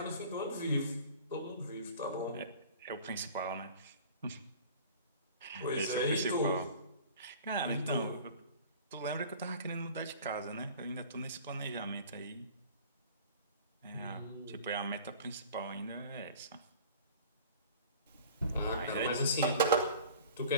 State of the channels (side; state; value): both; inverted; correlation -0.44